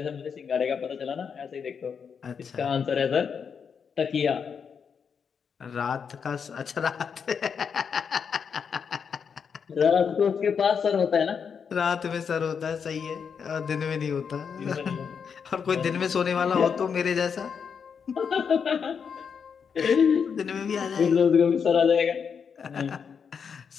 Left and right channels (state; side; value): quieter; right; 6.6 dB